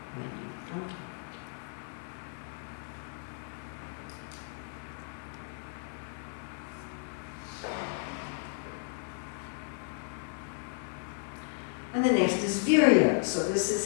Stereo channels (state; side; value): silent; right; 55 dB below the other